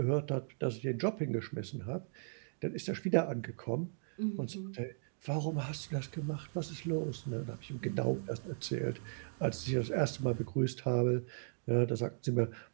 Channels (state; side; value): silent; left; digital silence